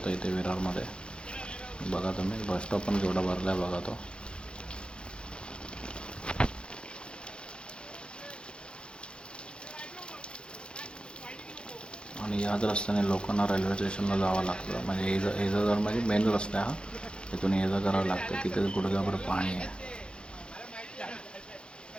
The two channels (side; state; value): right; late; 0.054 ms